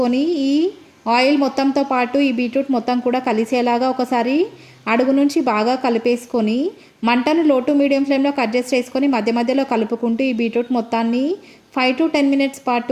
ఈ ఆయిల్ మొత్తంతో పాటు ఈ బీట్రూట్ మొత్తం కూడా కలిసేలాగా ఒకసారి అడుగు నుంచి బాగా కలిపేసుకొని మంటను లో టు మీడియం ఫ్లేమ్లోకి అడ్జస్ట్ చేసుకొని మధ్య మధ్యలో కలుపుకుంటూ ఈ బీట్రూట్ మొత్తాన్ని 5 to 10 మినిట్స్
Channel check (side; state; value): both; identical; correlation 1.00